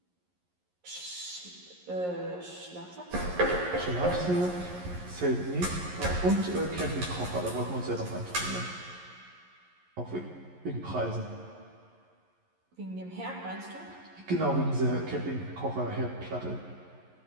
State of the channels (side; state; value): left; late; 11 ms